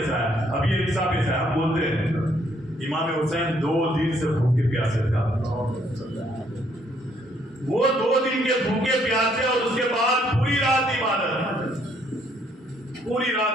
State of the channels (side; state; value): both; normal; correlation 0.68